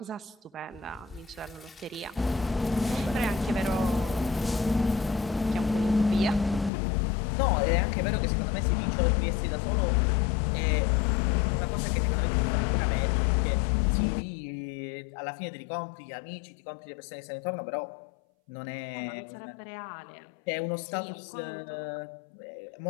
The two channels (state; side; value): drops out; right; at 6.7 s